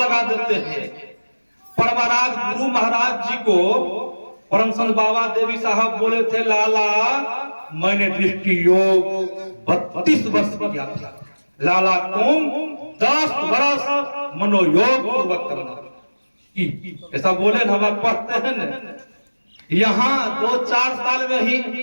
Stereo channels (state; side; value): inverted; both; correlation -1.00